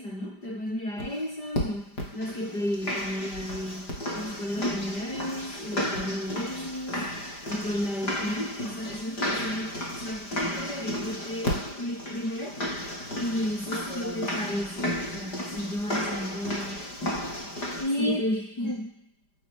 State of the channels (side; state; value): right; late; 5.0 ms